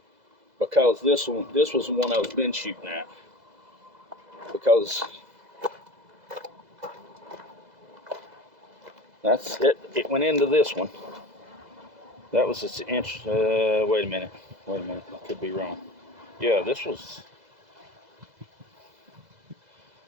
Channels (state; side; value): late; left; 2.0 ms